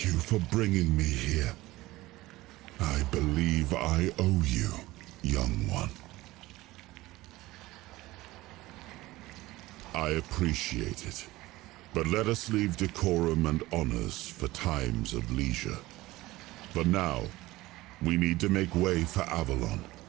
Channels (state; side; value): quieter; left; 18.6 dB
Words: you for bringing me here. I believe I owe you, young one. I appreciate it, but let us leave decorum and honors for times of leisure. For now, we need to make way for Avalon.